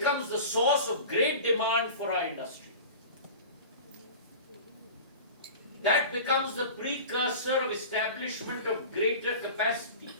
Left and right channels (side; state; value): both; inverted; correlation -0.36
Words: the source of great demand for our industry. That becomes the precursor of establishment of greater capacity,